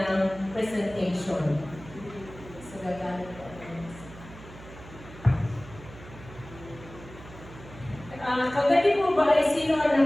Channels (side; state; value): right; noise; hum, 17 dB below the sound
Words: presentation. So, gagamit po. Kagabi po ba ay sino